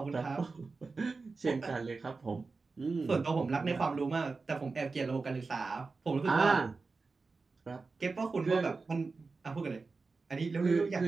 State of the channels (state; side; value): quieter; left; 4.1 dB